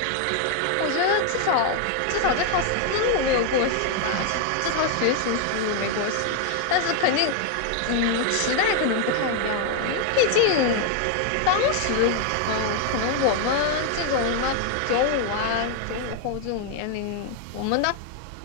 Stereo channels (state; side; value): different; both; correlation 0.00